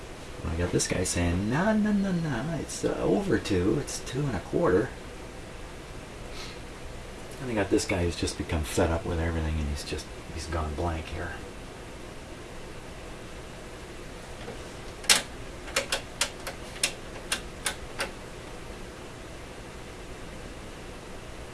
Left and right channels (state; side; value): identical; both; correlation 1.00